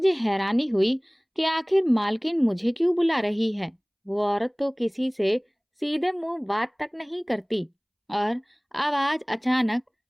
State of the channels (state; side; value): identical; both; correlation 1.00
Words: हैरानी हुई कि आखिर मालकिन मुझे क्यों बुला रही है। वो औरत तो किसी से सीधे मुंह बात तक नहीं करती, और अब आज अचानक